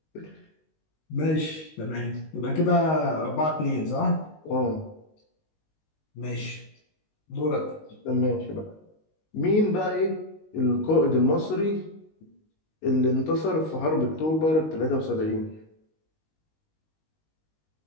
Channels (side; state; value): right; late; 19 ms